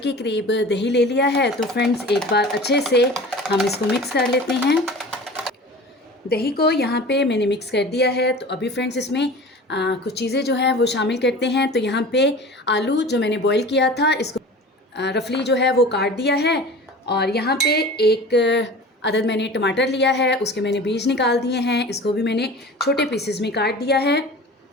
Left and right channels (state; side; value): normal; both; correlation 0.38